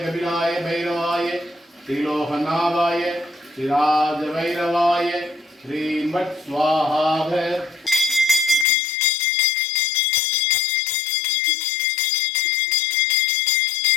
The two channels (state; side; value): drops out; right; at 8.7 s